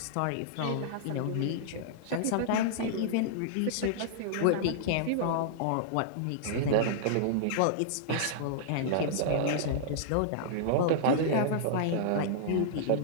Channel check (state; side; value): different; both; correlation -0.02